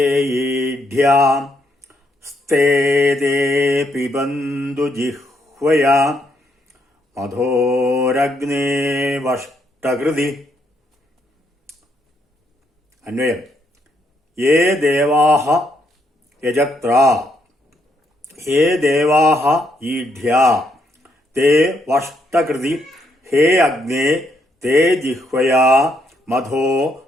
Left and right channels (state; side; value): normal; both; correlation 0.75